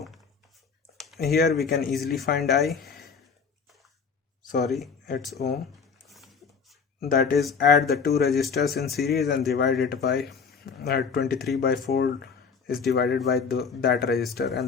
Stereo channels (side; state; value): right; quieter; 5.8 dB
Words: here we can easily find it's ohm, that is add the two resistors in series and divide it by 23 by 4 is divided by that resistor,